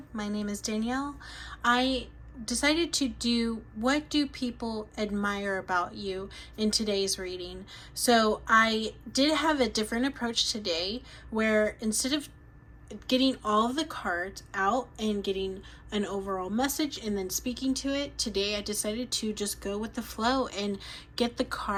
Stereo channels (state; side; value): identical; both; correlation 1.00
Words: My name is Danielle. I decided to do what do people admire about you in today's reading. So I did have a different approach today where instead of getting all of the cards out and getting an overall message and then speaking to it, today I decided to just go with the flow and get the